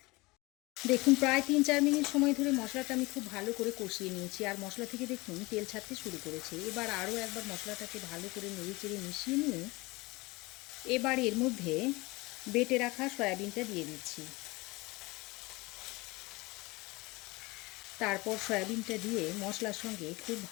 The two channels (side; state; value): right; quieter; 23.2 dB